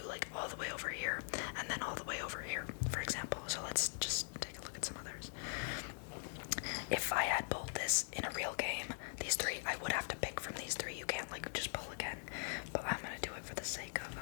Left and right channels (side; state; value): right; silent; digital silence